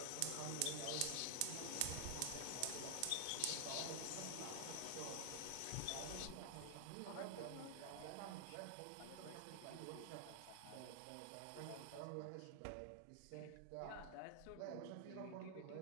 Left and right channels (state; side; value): different; both; correlation 0.00